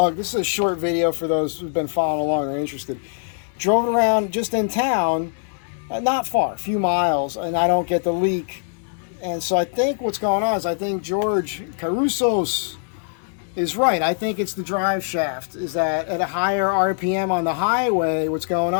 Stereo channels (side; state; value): right; silent; digital silence